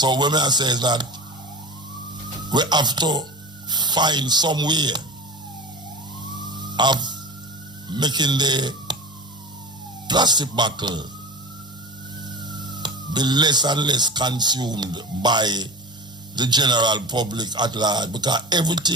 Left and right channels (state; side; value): normal; both; correlation 0.30